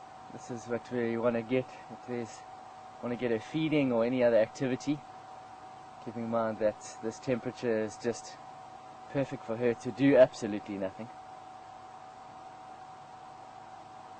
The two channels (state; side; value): identical; both; correlation 1.00